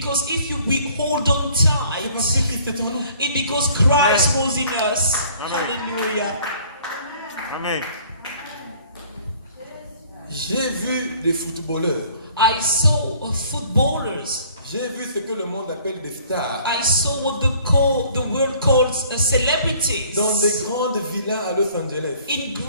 if we hold on C'est tight, parce que Christ est en nous. it's because Christ was in us. Hallelujah. Amen. J'ai vu des footballeurs. I saw footballers. J'ai vu ce que le monde appelle des stars. I saw what the world calls celebrities. Dans des grandes villas à Los Angeles. In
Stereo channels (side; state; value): both; inverted; correlation -0.56